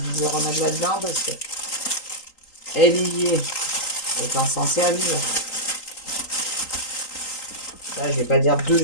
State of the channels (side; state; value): right; late; 3.8 ms